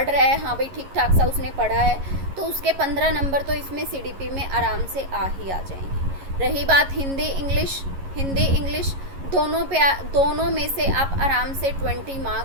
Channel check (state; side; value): late; left; 11 ms